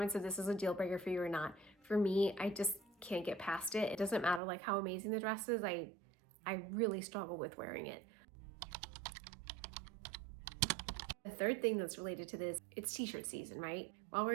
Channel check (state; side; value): drops out; left; at 4.4 s